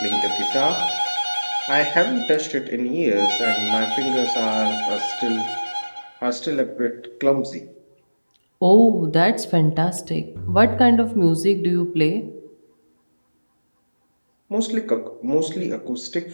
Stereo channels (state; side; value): inverted; both; correlation -1.00